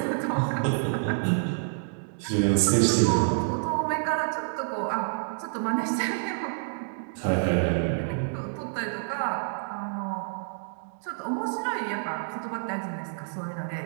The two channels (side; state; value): left; silent; digital silence